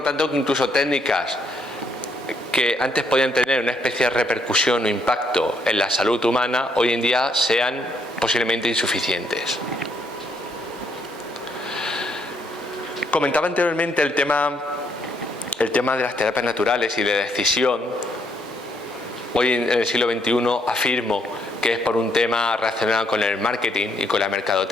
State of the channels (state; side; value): normal; both; correlation 0.72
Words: tanto que incluso técnicas que antes podían tener una especie de repercusión o impacto en la salud humana, hoy en día sean posiblemente insuficientes. Comentaba anteriormente el tema de las terapias naturales y de decisión. Hoy en el siglo XXI afirmo que es por un tema relacionado con el marketing y con la